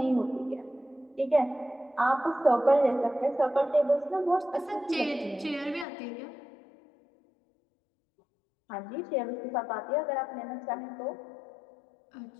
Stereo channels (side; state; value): right; drops out; at 5.9 s